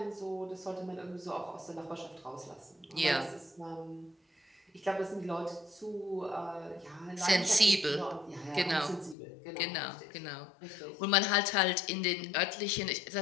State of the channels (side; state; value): right; drops out; at 9.2 s